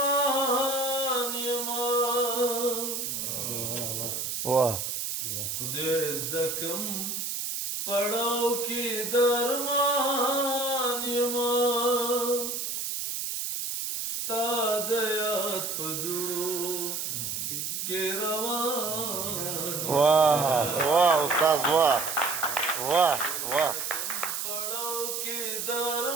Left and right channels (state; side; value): noise; right; hiss, 3 dB below the sound